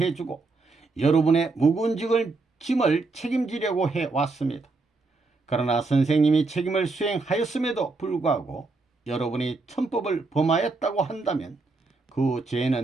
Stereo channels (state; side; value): quieter; left; 3.7 dB